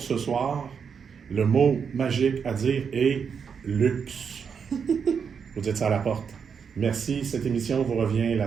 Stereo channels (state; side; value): quieter; left; 6.5 dB